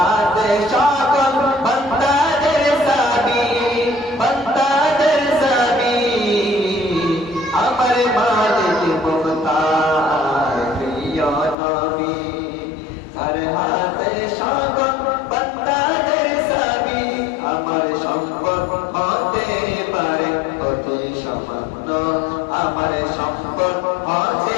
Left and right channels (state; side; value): drops out; right; at 11.6 s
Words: সকল বান্দাদের সাবি, বান্দাদের সাবি। আমার মালিক মুখতার প্রিয় নবী, যার হাতে সকল বান্দাদের সাবি। আমার সম্পদ হতে পারে অতি সামান্য, আমার সম্পদ